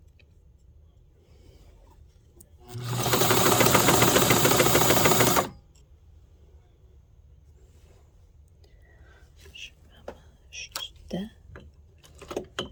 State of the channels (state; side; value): identical; both; correlation 1.00